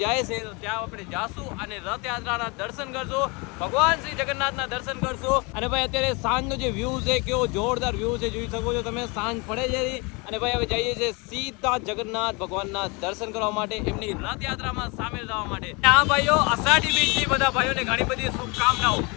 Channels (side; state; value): right; quieter; 28.7 dB